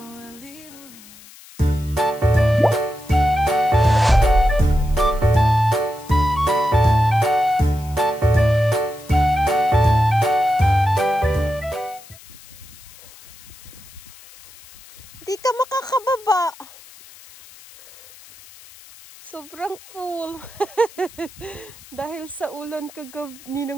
while leaving me. Di ka makakababa. Sobrang full. Dahil sa ulan kagabi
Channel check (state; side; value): noise; left; hiss, 21 dB below the sound